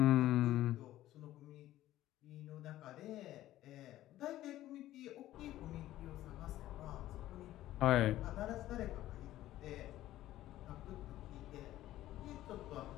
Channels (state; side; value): quieter; right; 14.4 dB